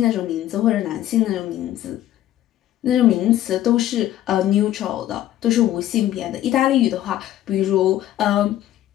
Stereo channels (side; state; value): right; quieter; 13.0 dB